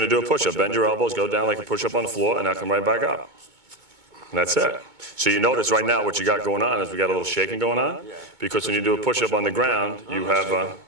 to do a push-up. Bend your elbows, go down like a push-up on the floor, and now come right back up. And that's it. So you notice right now what you got going on is we got a little shaking going on. Yeah. Because when you do a push-up on the ground, you have,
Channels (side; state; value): left; late; 2.2 ms